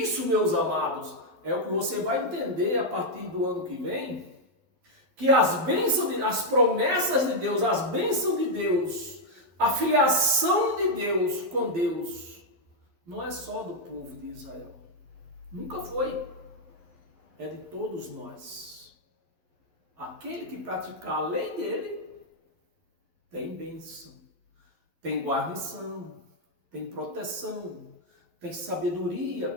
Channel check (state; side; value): late; left; 11 ms